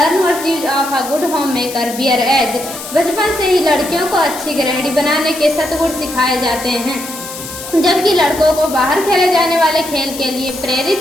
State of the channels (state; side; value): noise; left; hiss, 11 dB below the sound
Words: virtues of a good homemaker bare age. बचपन से ही लड़कियों को अच्छी गृहिणी बनाने के सद्गुण सिखाए जाते हैं, जबकि लड़कों को बाहर खेले जाने वाले खेल के लिए